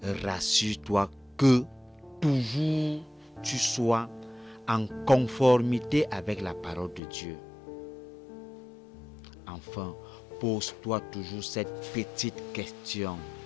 Rassure-toi que toujours tu sois en conformité avec la parole de Dieu. Enfin, pose-toi toujours cette petite question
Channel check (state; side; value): drops out; right; at 7.0 s